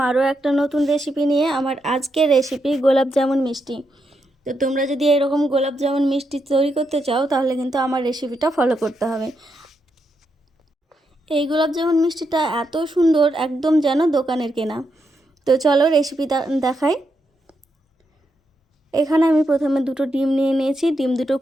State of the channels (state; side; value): normal; both; correlation 0.82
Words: আরও একটা নতুন রেসিপি নিয়ে। আমার আজকের রেসিপি গোলাপ জামুন মিষ্টি। তো তোমরা যদি এরকম গোলাপ জামুন মিষ্টি তৈরি করতে চাও তাহলে কিন্তু আমার রেসিপিটা ফলো করতে হবে। এই গোলাপ জামুন মিষ্টিটা এত সুন্দর, একদম যেন দোকানের কেনা। তো চলো রেসিপি দেখাই। এখানে আমি প্রথমে দুটো ডিম নিয়ে নিয়েছি। ডিম দুটো